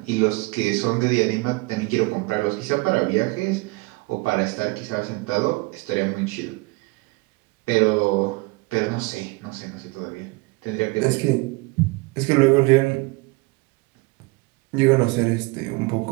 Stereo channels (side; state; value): left; quieter; 24.9 dB